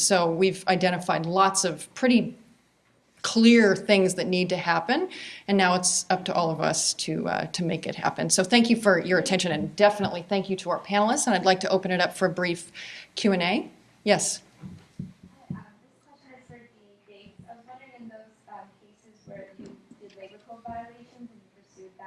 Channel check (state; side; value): identical; both; correlation 1.00